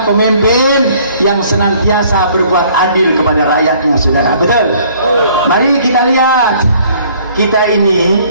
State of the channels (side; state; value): both; inverted; correlation -0.58